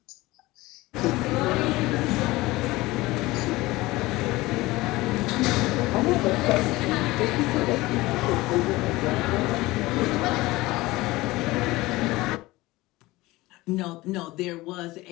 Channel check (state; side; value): quieter; right; 19.8 dB